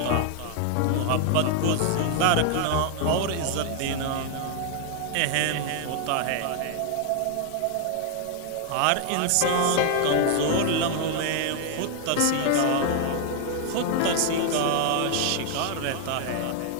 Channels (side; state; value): both; different; correlation 0.00